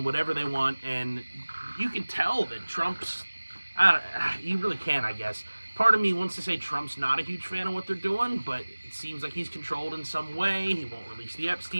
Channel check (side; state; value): both; inverted; correlation -1.00